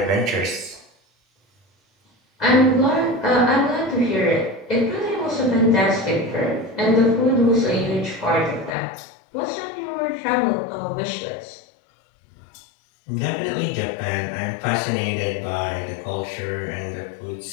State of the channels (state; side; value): drops out; right; at 8.8 s